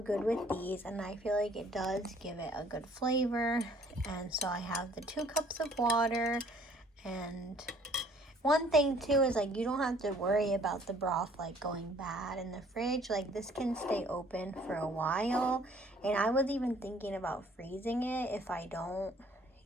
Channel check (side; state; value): both; normal; correlation 0.58